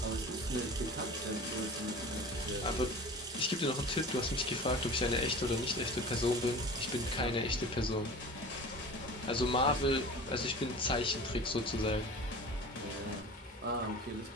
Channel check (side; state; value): both; normal; correlation 0.37